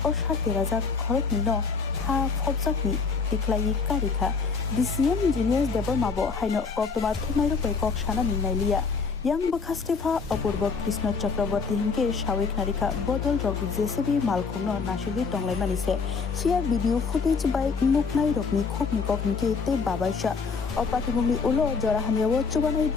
Osha Tirazak Korokino Ha Fopsaki Tiklai Karika DCM Engineers Debor Mabo Haino Koktoma Tumairo Pekok Shana Nailia Yang Bakastifa Apurba Krishna Chakraborty Hinke Shawik Narika Bodol Rog JCB Malkumno Nashiri Tonglai Manise Share video footage by Nuknai Rokni Khopni Koknike Te Babaisha Opatibumi Ulo Jora Hamiawo Chubanai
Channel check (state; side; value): quieter; right; 5.0 dB